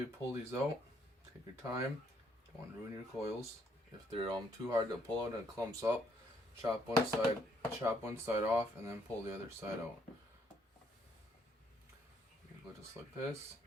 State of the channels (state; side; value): normal; both; correlation 0.69